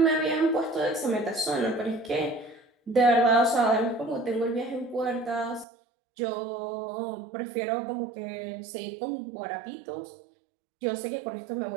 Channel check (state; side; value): drops out; left; at 5.7 s